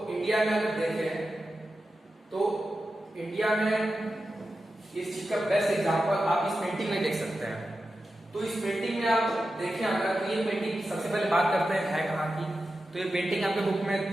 इंडिया में अगर देखें तो इंडिया में इस चीज का बेस्ट एग्जाम्पल आप इस पेंटिंग में देख सकते हैं। तो इस पेंटिंग में आप देखें अगर, तो ये पेंटिंग सबसे पहले बात करते हैं है कहाँ की। तो ये पेंटिंग आपके बुक में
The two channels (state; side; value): normal; both; correlation 0.91